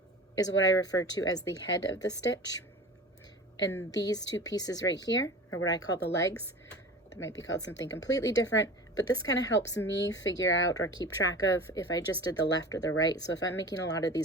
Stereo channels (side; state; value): both; normal; correlation 0.36